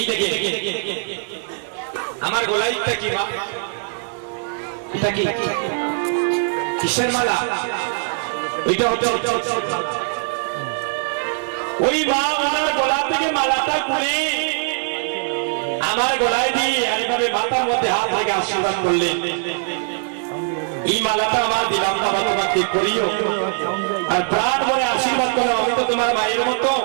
দেখে আমার গলাইটা কি মা, এটা কি কিসের মালা? ওইটা হচ্ছে ওই মা আমার গলা থেকে মালাটা খুলে আমার গলায় দিয়ে এইভাবে মাথার মধ্যে হাত রেখে আশীর্বাদ করলেন। এই মালাটা আমার দিলাম না, তোমাকে করিও আর প্রাণ ভরে আশীর্বাদ করো, আমি তো তোমার মায়ের মতো,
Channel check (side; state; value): left; silent; 59 dB below the other